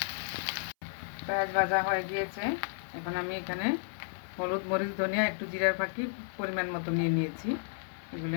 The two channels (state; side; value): silent; right; 56 dB below the other